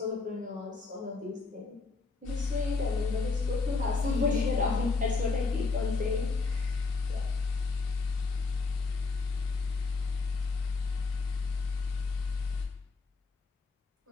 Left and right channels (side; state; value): right; quieter; 4.0 dB